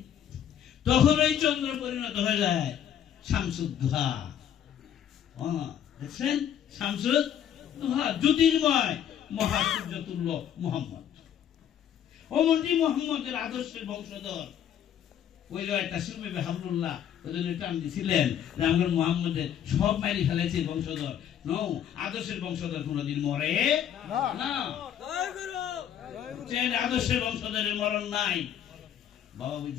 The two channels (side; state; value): right; quieter; 9.7 dB